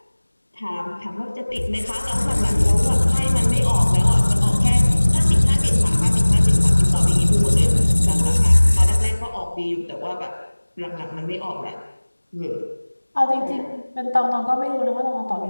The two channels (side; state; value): both; inverted; correlation -1.00